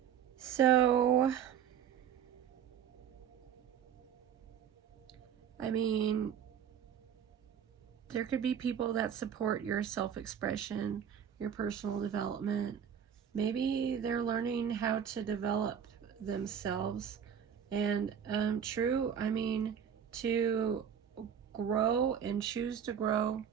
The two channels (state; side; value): quieter; left; 8.4 dB